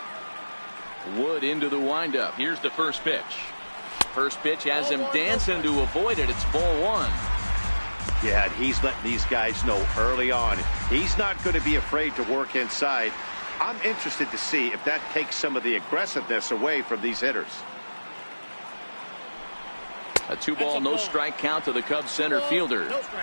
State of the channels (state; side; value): inverted; both; correlation -1.00